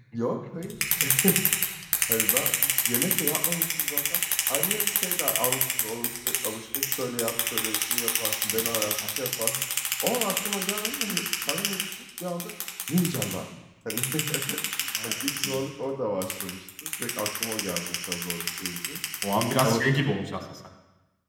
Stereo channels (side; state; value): both; identical; correlation 1.00